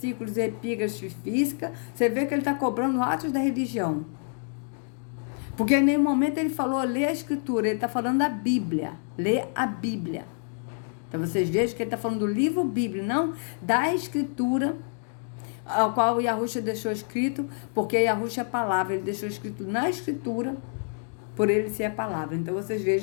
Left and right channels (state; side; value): silent; right; 55 dB below the other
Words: epígrafes física. Você vê que ele está cobrando atos da religião. Porque em nenhum momento ele falou ler a Escritura, ele está falando da Bíblia, ler a Bíblia. Então vocês vejam que ele está falando do livro Bíblia, não da Escritura, ao qual o Yahushua deixou escrito, porque Yahushua é a palavra, ele deixou escrito na Escritura, por ele ser a palavra. Então vocês